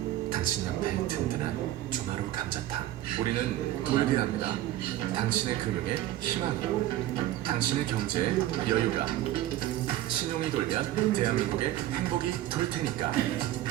당신 옆에 든든한 조마루 감자탕. 우리는 돌게합니다. 당신의 금융에 희망이, 당신의 경제에 여유가. 신용이 돌면 대한민국의 행복이 돌 테니까.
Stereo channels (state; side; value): quieter; left; 14.1 dB